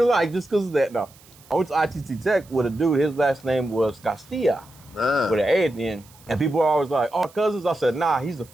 like just because of that. No. I went to ITT Tech with a dude. His last name was Castillo with an A at the end. And people were always like, "Oh, cousins." I said, "Nah, he's the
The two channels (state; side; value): noise; right; hiss, 26 dB below the sound